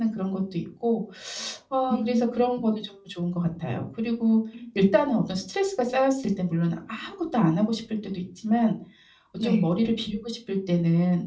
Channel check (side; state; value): both; identical; correlation 1.00